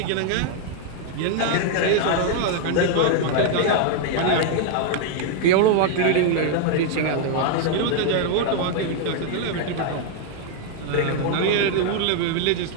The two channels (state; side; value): different; both; correlation 0.00